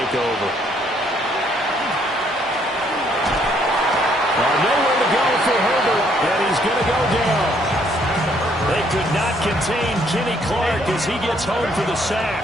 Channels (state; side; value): normal; both; correlation 0.67